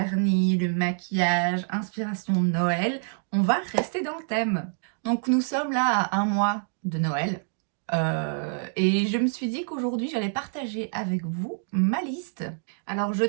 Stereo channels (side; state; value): left; silent; digital silence